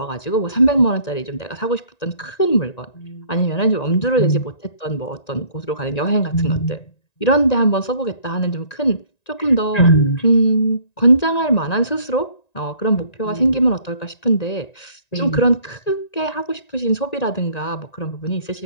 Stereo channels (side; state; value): right; late; 1.9 ms